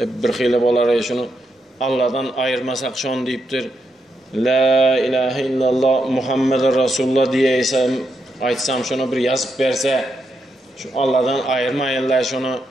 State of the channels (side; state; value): both; normal; correlation 0.82